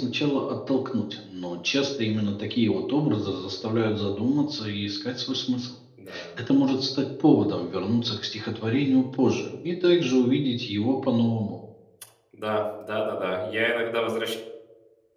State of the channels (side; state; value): both; identical; correlation 1.00